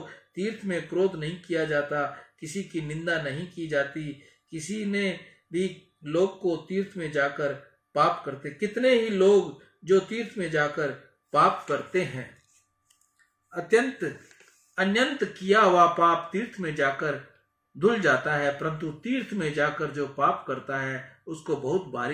तीर्थ में क्रोध नहीं किया जाता, किसी की निंदा नहीं की जाती। किसी ने भी लोग को तीर्थ में जाकर पाप करते, कितने ही लोग जो तीर्थ में जाकर पाप करते हैं। अत्यंत किया हुआ पाप तीर्थ में जाकर धुल जाता है, परंतु तीर्थ में जाकर जो पाप करता है उसको बहुत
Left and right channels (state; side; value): identical; both; correlation 1.00